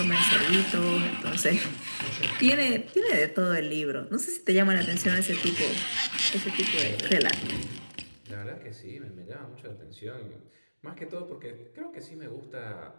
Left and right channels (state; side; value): inverted; both; correlation -1.00